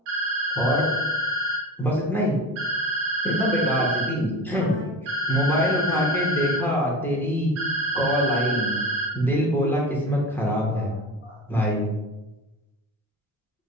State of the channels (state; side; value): normal; both; correlation 0.31